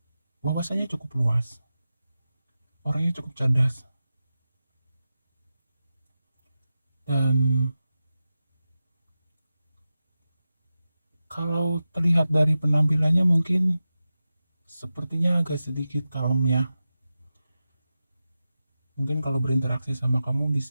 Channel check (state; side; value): inverted; both; correlation -0.93